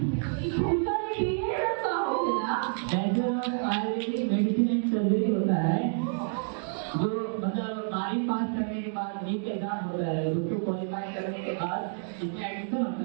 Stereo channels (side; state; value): left; silent; 59 dB below the other